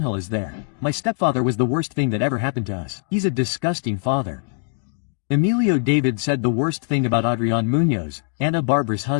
is there. My stepfather was the worst thing that ever happened to us. He's a disgusting father. Emilio David said the worst thing about Adrián Muñoz, Ana Barbara's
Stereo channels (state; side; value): silent; right; 61 dB below the other